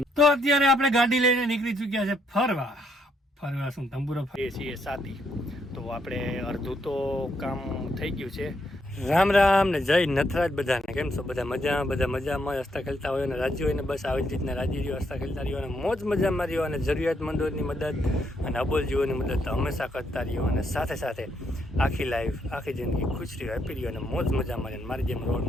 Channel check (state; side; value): normal; both; correlation 0.75